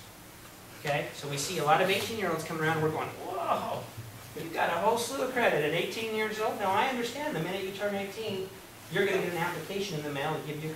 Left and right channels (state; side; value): identical; both; correlation 1.00